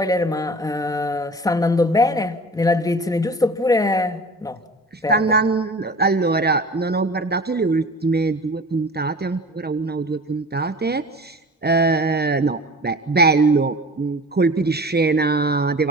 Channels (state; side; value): normal; both; correlation 0.40